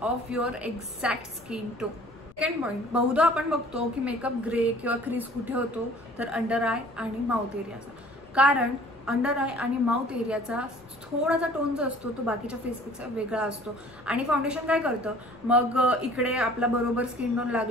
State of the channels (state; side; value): noise; left; rumble, 27 dB below the sound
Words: of your exact skin tone. Second point, बहुधा आपण बघतो की मेकअप ग्रे किंवा क्रीज कुठे होतो तर अंडर आय आणि माउथ एरियाचा. कारण अंडर आय आणि माउथ एरियाचा थोडासा टोन जो असतो तो बाकीच्या फेसपेक्षा वेगळा असतो आणि फाउंडेशन काय करतं, मग इकडे आपला बरोबर स्किन टोन